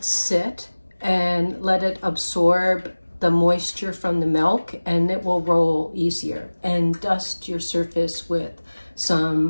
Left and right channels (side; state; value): both; inverted; correlation -1.00